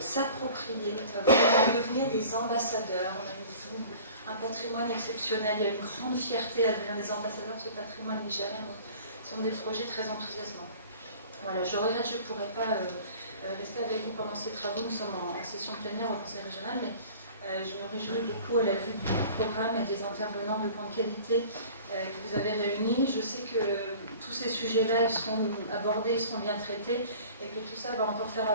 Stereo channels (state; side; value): inverted; both; correlation -0.45